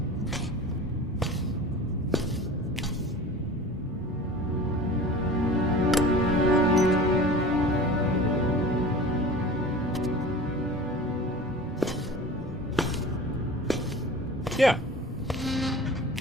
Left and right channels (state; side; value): normal; both; correlation 0.38